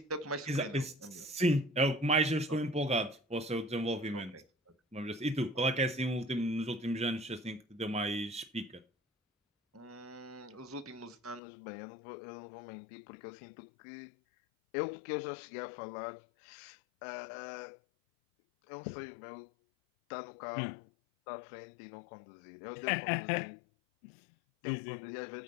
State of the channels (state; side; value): drops out; right; at 11.4 s